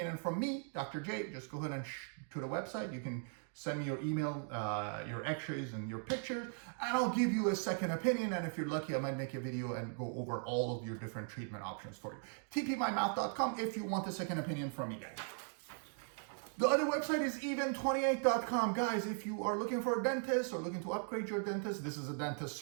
from me, Dr. J, just go ahead and to the website. You can send me your email, your x-rays and your pictures, and I'll give you a second opinion. And if you're lucky, I might make a video and go over all of your different treatment options for you. tpmymouth.com if you want a second opinion from me, guys. The other website is even28.com. Guys, if you are looking for a dentist or looking to upgrade your dentist, this is a dentist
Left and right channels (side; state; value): left; silent; 52 dB below the other